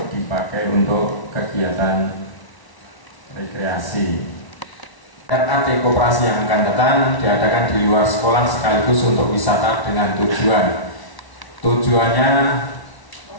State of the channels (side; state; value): right; late; 1.1 ms